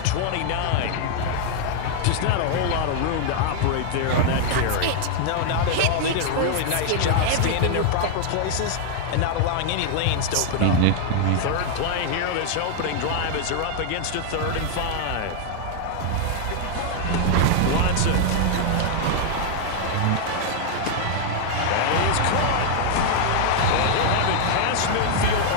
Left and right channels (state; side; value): different; both; correlation 0.00